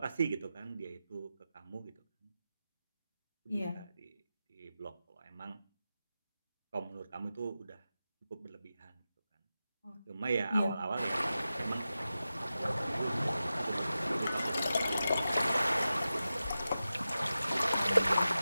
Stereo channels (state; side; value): inverted; both; correlation -0.93